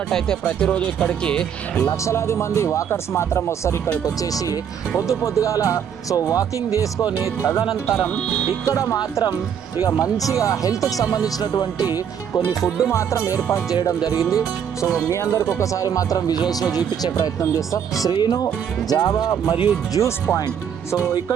ప్రతిరోజు ఇక్కడికి లక్షలాది మంది వాకర్స్ మాత్రం వస్తారు. ఇక్కడికి వచ్చేసి పొద్దుగాల సో వాకింగ్ చేసుకొని తదనంతరం ఇక్కడ మాత్రం ఇక మంచిగా హెల్త్కి సంబంధించినటువంటి కొన్ని ఫుడ్ మాత్రం ఏర్పాటు చేయడం జరిగింది. సో మీ అందరికి ఒకసారి మాత్రం విజువల్స్లో చూపించే ప్రయత్నం చేస్తాం. శ్రీను జావా మరియు జ్యూస్ పాయింట్. సో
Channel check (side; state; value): left; quieter; 8.3 dB